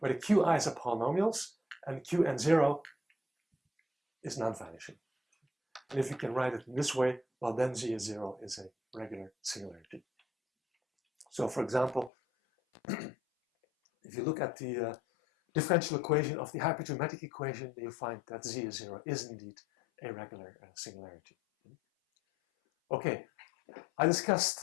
the qi's are polynomials and qn0 is non-vanishing. And if you can write it in this way, well, then z is 0 is a regular singularity. So for example, if you look at the differential equation of the hypergeometric equation, you find that z is 0 is indeed a regular singularity. Okay, I discussed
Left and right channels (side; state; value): right; drops out; at 12.1 s